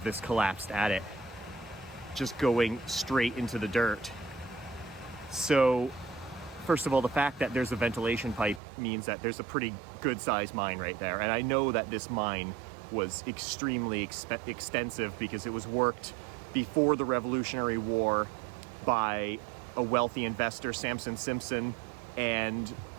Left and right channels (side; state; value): left; drops out; at 8.6 s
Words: this collapsed adit, just going straight into the dirt. So, first of all, the fact that there's a ventilation pipe means that there's a pretty good sized mine right there. And I know that this mine was extremely extensive because it was worked before the Revolutionary War by a wealthy investor, Samson Simpson, and